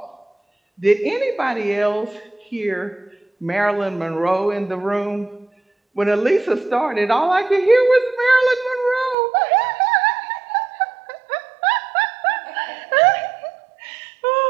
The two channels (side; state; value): left; drops out; at 9.2 s